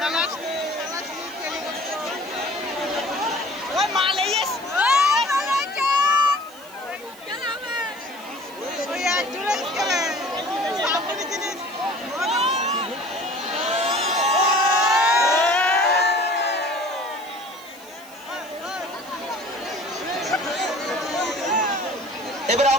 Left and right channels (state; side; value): noise; right; hiss, 22 dB below the sound